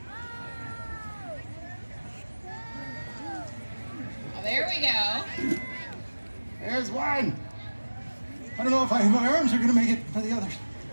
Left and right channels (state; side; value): inverted; both; correlation -1.00